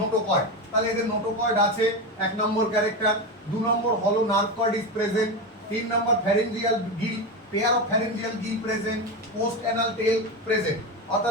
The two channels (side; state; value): both; normal; correlation 0.18